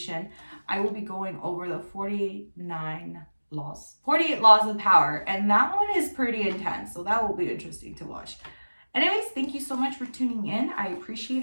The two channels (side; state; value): both; inverted; correlation -1.00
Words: I will be going over the 48 laws of power, and that one is pretty intense, so that will be interesting to watch. Anyways, thank you so much for tuning in. I appreciate